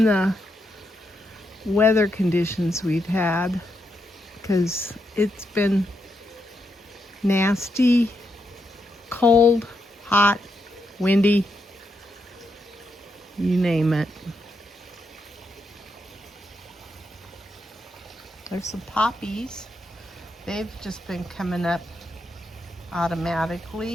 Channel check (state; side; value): normal; both; correlation 0.82